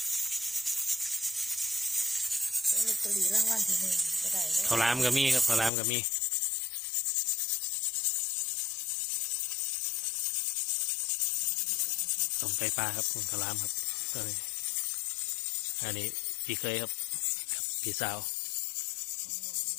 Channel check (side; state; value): right; drops out; at 5.7 s